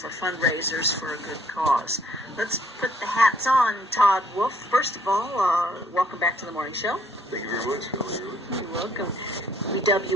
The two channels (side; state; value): both; normal; correlation 0.64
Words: fundraisers for a good cause. Let's put the hats on, Todd Wolf. First of all, welcome back to the morning show. Thank you very much, Shelley Irwin. You're welcome. We dub